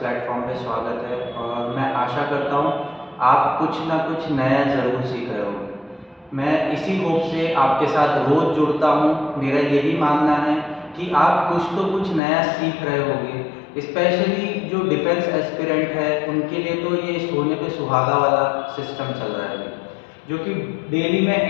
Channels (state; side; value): drops out; right; at 12.2 s